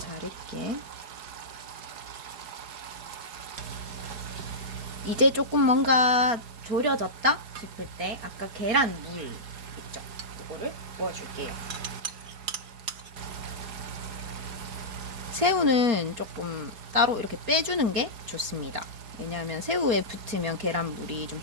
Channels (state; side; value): late; left; 4.3 ms